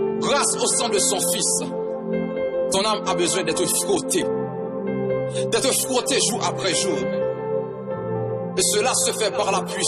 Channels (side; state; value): both; identical; correlation 1.00